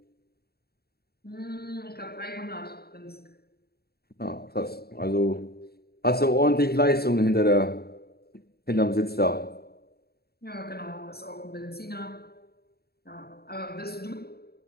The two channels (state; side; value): late; right; 0.46 ms